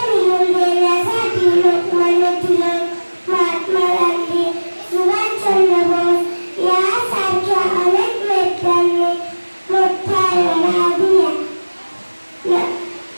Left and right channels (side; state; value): both; inverted; correlation -1.00